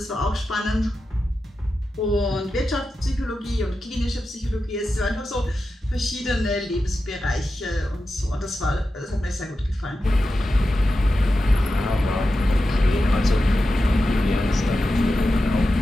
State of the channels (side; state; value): both; normal; correlation 0.91